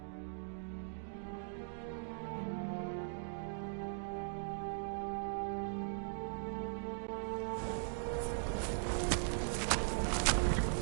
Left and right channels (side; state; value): left; silent; digital silence